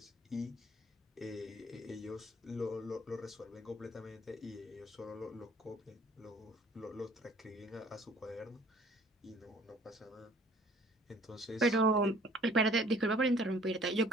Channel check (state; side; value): normal; both; correlation 0.55